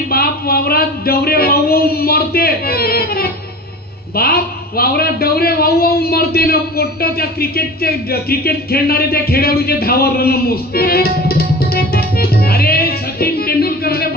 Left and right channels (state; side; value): normal; both; correlation 0.36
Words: बाप वावरात डवरे वाहू मरते. बाप वावरात डवरे वाहू मरते ना. पोट्ट त्या क्रिकेट खेळणारे त्या खेळाडूचे धावा रन मोजते. अरे सचिन तेंडुलकरने